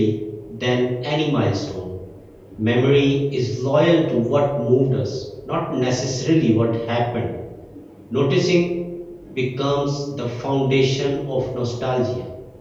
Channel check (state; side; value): identical; both; correlation 1.00